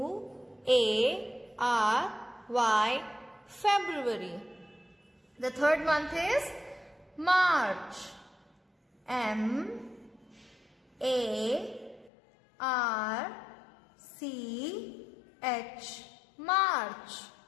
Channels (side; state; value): right; drops out; at 12.1 s